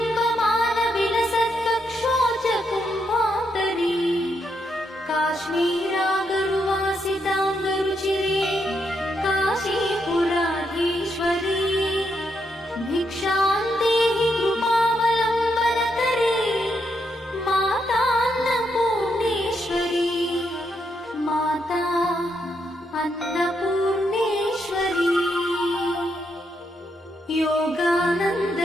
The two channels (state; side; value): normal; both; correlation 0.79